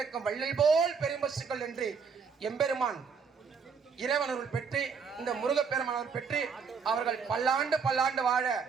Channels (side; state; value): left; quieter; 5.9 dB